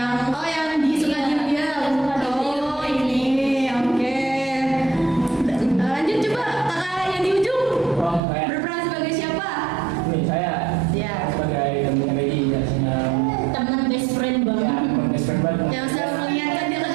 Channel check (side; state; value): left; drops out; at 8.2 s